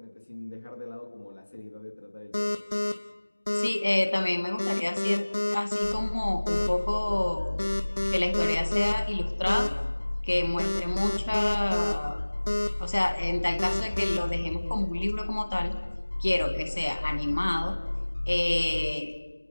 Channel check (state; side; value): inverted; both; correlation -1.00